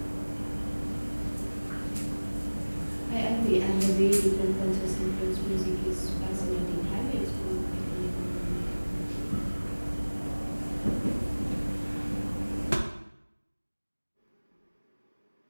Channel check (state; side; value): inverted; both; correlation -1.00